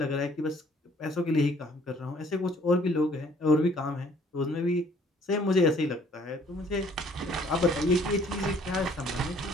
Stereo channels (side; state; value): both; normal; correlation 0.59